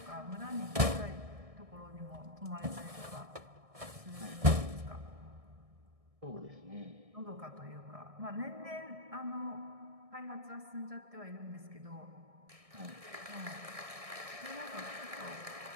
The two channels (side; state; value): left; late; 1.6 ms